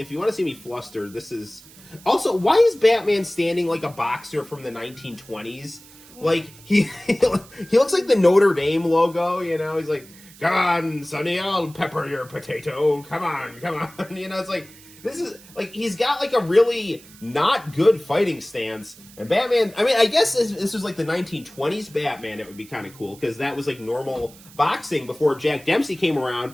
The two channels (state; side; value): noise; right; hiss, 22 dB below the sound